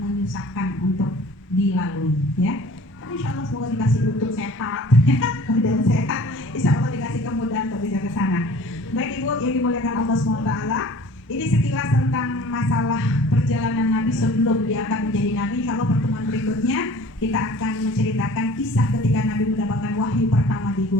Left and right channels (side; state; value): both; normal; correlation 0.46